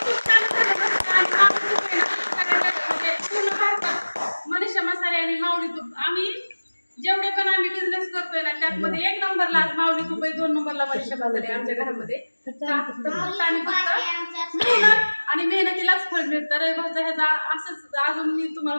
मनीषा मसाले आणि माऊली तूप, आम्ही जेवढे पण आम्ही बिझनेस करतोय ना त्यामध्ये 1 नंबरला आज माऊली तूप आहे, 2 नंबरला मनीषा मसाले आमच्या घरामध्ये. आणि मेहनतीलाच फळ मिळतं. रविवारचा ह्याचा असंच अजून मी तुम्हाला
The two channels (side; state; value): both; inverted; correlation -1.00